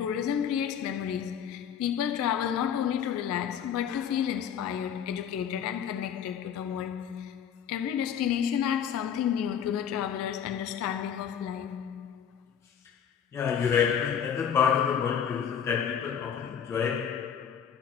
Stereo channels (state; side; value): quieter; right; 8.2 dB